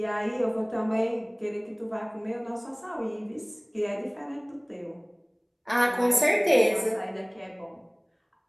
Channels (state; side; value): identical; both; correlation 1.00